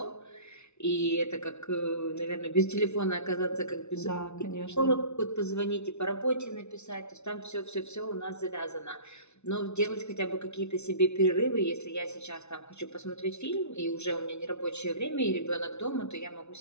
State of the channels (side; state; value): right; late; 0.81 ms